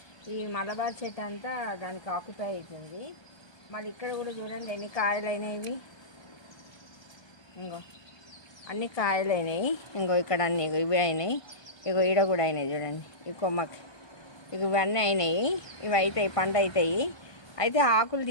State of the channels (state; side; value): late; right; 1.2 ms